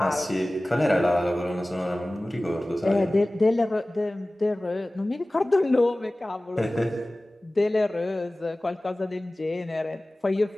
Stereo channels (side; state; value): both; normal; correlation 0.98